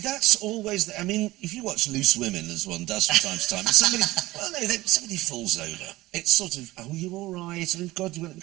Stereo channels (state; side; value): quieter; left; 18.4 dB